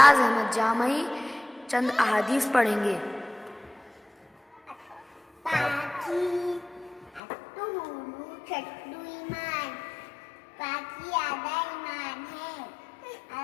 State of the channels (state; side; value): drops out; right; at 7.2 s